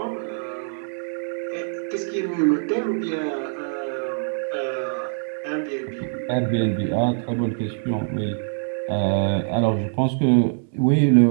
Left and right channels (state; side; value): silent; left; 63 dB below the other